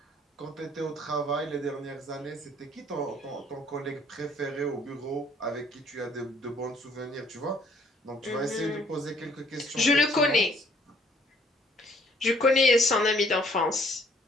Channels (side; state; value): both; normal; correlation 0.61